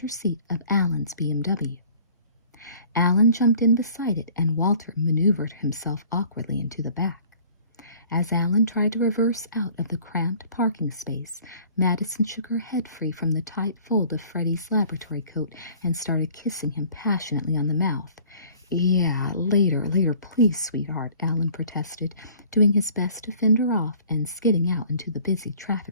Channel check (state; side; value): inverted; both; correlation -0.52